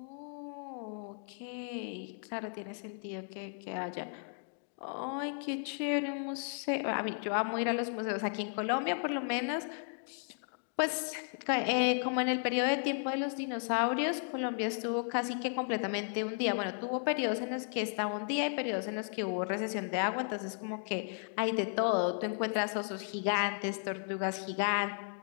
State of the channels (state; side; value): silent; right; 55 dB below the other